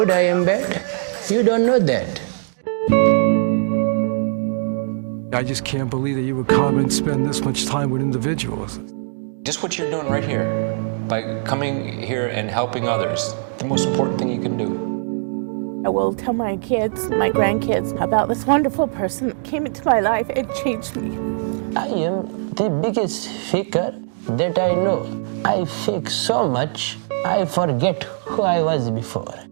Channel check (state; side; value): silent; left; digital silence